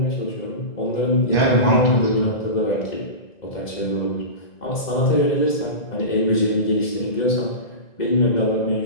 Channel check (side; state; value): right; late; 2.0 ms